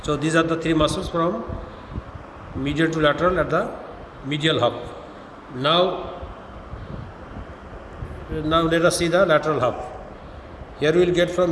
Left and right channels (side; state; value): both; identical; correlation 1.00